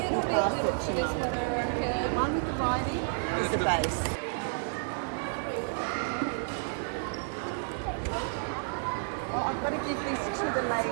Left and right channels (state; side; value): silent; left; digital silence